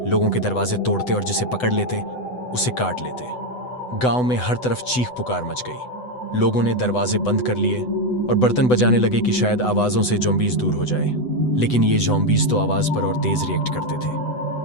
लोगों के दरवाजे तोड़ते और जिसे पकड़ लेते उसे काट लेते। गांव में हर तरफ चीख पुकार मच गई। लोगों ने दरवाजे बंद कर लिए और बर्तन बजाने लगे कि शायद आवाजों से ज़ॉम्बीज़ दूर हो जाए, लेकिन ये ज़ॉम्बीज़ तो आवाज पर और तेज रिएक्ट करते थे।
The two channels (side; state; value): right; late; 8.0 ms